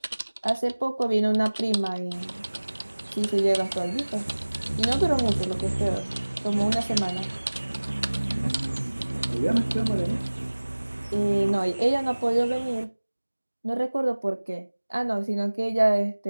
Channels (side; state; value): both; inverted; correlation -1.00